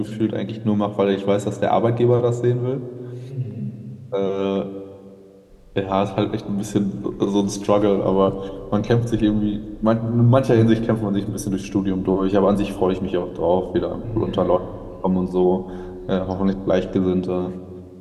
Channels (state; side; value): identical; both; correlation 1.00